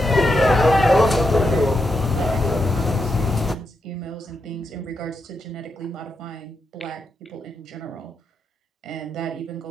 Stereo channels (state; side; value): normal; both; correlation 0.84